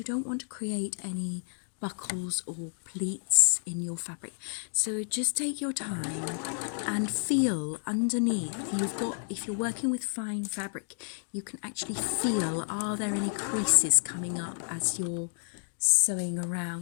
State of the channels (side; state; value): right; silent; 56 dB below the other